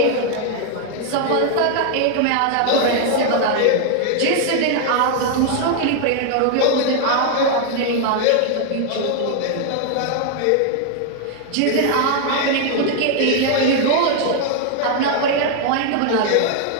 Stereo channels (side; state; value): both; different; correlation 0.00